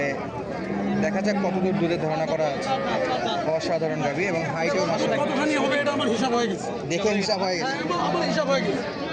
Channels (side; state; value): both; identical; correlation 1.00